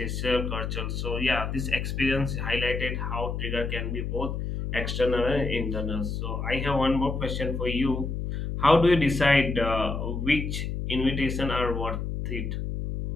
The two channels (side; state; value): left; noise; hum, 3 dB below the sound